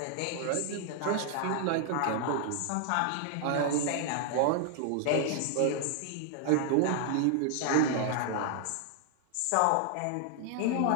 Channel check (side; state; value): both; different; correlation 0.00